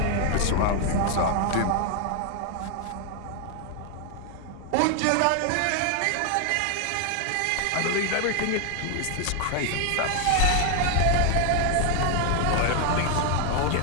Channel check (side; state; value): both; different; correlation 0.00